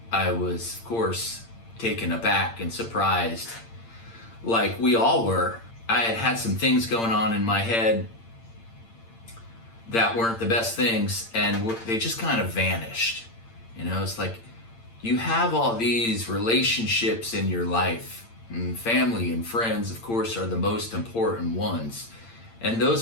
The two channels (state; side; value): late; right; 8.8 ms